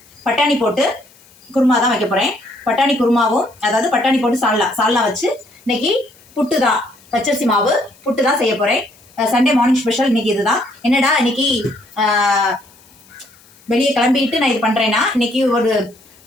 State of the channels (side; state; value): left; noise; hiss, 28 dB below the sound